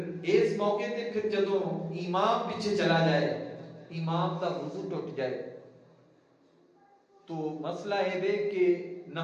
اس موقع تے پھر جدوں امام پیچھے چلا جائے، امام کا وضو ٹوٹ جائے تو مسئلہ ہے کہ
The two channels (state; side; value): identical; both; correlation 1.00